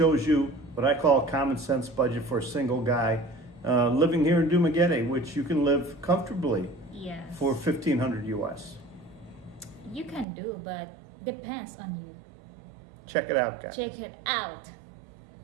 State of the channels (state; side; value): drops out; left; at 10.2 s